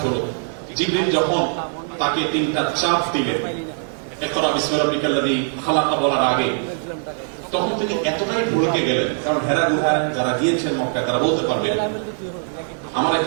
হলো, জিবরিল যখন তাকে 3টা চাপ দিলেন, ইকরা বিসমি রাব্বিকাল্লাযী খালাকা বলার আগে, তখন তিনি এতটাই ভুলকে গেলেন। কারণ হেরা গুহায় যারা গিয়েছেন মক্কায় তারা বলতে পারবেন, আমার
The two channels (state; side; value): silent; left; digital silence